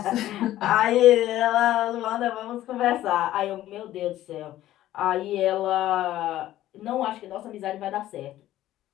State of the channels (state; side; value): quieter; right; 13.9 dB